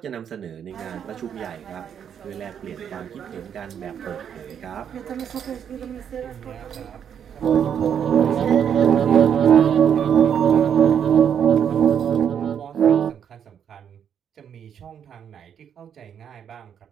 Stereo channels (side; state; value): left; quieter; 8.4 dB